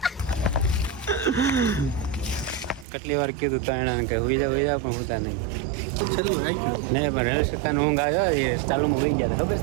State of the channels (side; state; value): left; drops out; at 2.9 s